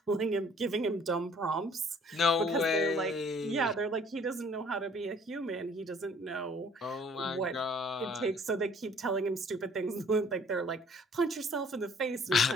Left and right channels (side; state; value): both; normal; correlation 0.57